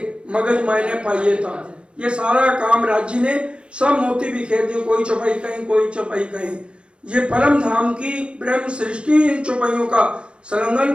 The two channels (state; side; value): late; left; 0.057 ms